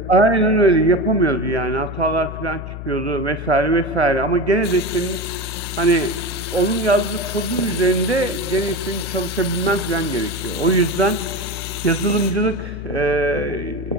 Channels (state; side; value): noise; left; hum, 9 dB below the sound